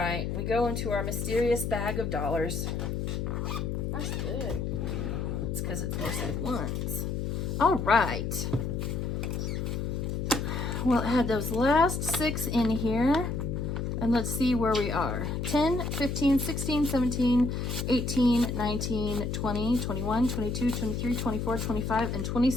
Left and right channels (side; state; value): left; noise; hum, 2 dB below the sound